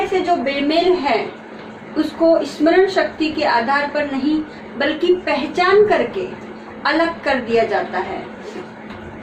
से जो बेमेल है उसको स्मरण शक्ति के आधार पर नहीं बल्कि पहचान करके अलग कर दिया जाता है।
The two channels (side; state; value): both; identical; correlation 1.00